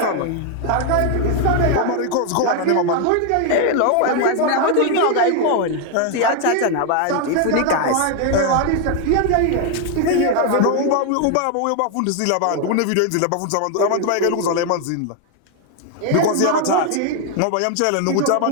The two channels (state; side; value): different; both; correlation 0.01